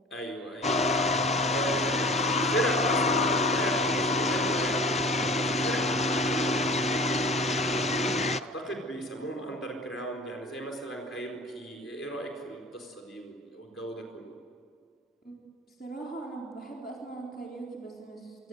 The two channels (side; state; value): both; normal; correlation 0.42